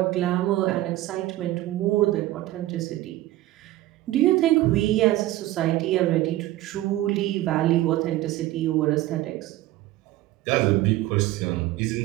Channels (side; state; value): left; quieter; 15.9 dB